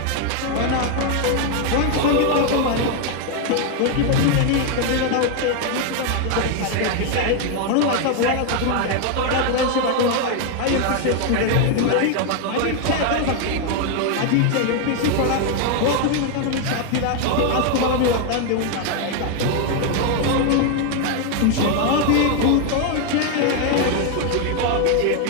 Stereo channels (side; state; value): both; different; correlation 0.01